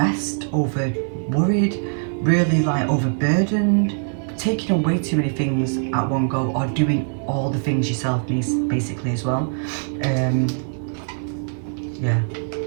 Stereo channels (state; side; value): silent; left; 64 dB below the other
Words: over worried, really like overburdened, taking on way too many things at one go, or doing all the things yourself, basically, as well. Yeah,